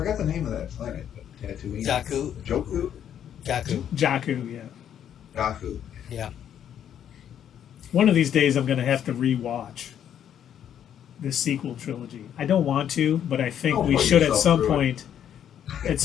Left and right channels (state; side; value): quieter; right; 9.6 dB